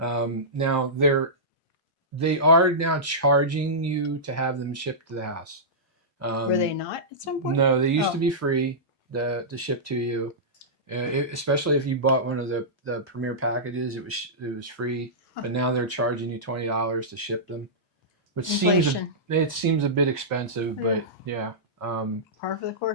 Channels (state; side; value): normal; both; correlation -0.15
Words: Now they are now charging you to have them shipped to the house. Were they not at some point? No, they used to be free to ship to you. Especially if you bought one of the premier packages, it was free. Huh. But now they're charging you $20 to ship them, which Inflation. seems a bit expensive, but yeah. Par for the